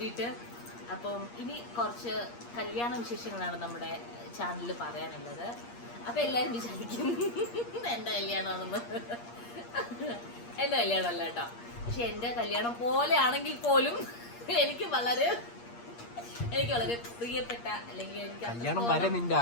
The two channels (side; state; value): right; late; 8.5 ms